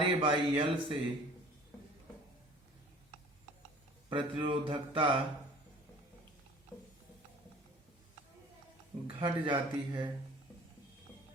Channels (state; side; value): normal; both; correlation 0.47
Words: ए बाई एल से प्रतिरोधकता घट जाती है,